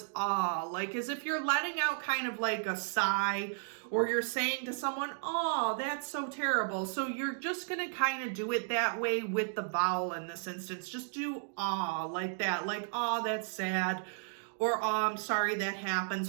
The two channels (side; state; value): left; silent; digital silence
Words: ah, like as if you're letting out kind of like a sigh, or you're saying to someone, oh, that's so terrible. So you're just going to kind of do it that way with the vowel in this instance. Just do ah like that, like, oh, that's sad, or oh, I'm sorry that happened.